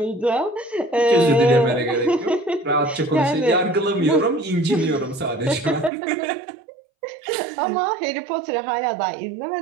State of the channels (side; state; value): left; drops out; at 5.9 s